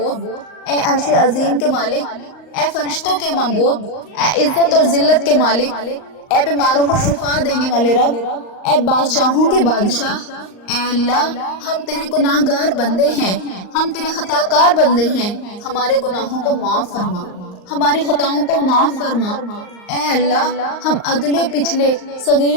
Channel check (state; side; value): late; right; 38 ms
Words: اے عرش عظیم کے مالک، اے فرشتوں کے معبود، اے عزت اور ذلت کے مالک، اے بیماروں کو شفا دینے والے رب، اے بادشاہوں کے بادشاہ، اے اللہ، ہم تیرے گناہ گار بندے ہیں، ہم تیرے خطا کار بندے ہیں، ہمارے گناہوں کو معاف فرما، ہماری خطاؤں کو معاف فرما۔ اے اللہ، ہم اگلے پچھلے